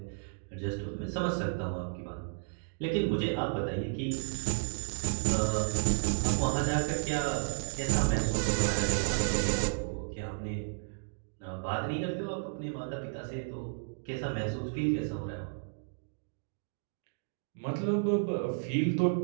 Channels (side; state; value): left; silent; digital silence